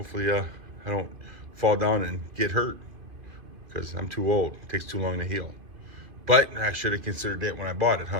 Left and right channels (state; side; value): late; left; 2.5 ms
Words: I don't fall down and get hurt, because I'm too old. It takes too long to heal. But I should have considered that when I bought it,